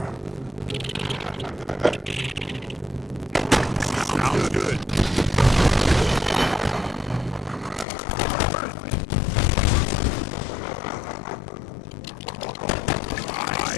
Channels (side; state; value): right; drops out; at 7.9 s